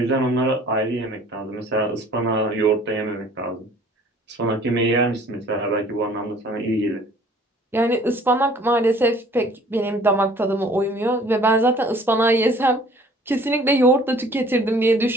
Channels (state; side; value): normal; both; correlation 0.53